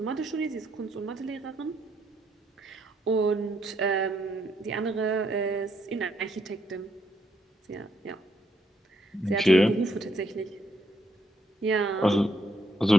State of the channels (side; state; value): both; normal; correlation 0.74